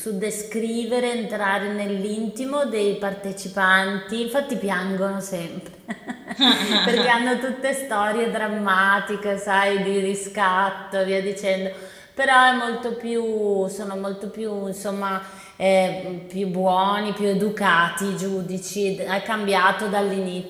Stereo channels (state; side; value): identical; both; correlation 1.00